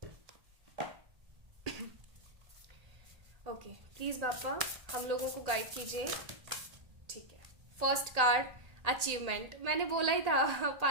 ओके प्लीज बापा हम लोगों को गाइड कीजिए। ठीक है, फर्स्ट कार्ड अचीवमेंट, मैंने बोला ही था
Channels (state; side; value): late; left; 1.8 ms